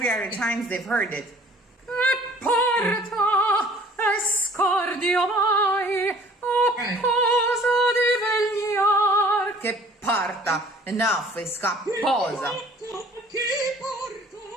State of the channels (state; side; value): normal; both; correlation 0.52